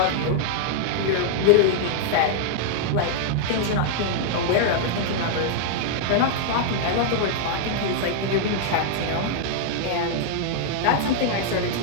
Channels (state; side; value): different; both; correlation -0.01